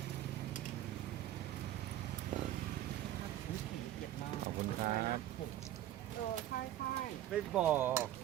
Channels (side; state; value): left; quieter; 12.9 dB